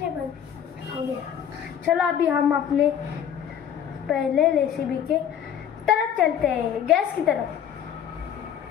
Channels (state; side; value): quieter; right; 9.0 dB